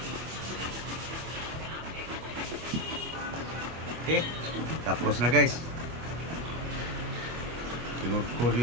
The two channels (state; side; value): late; left; 25 ms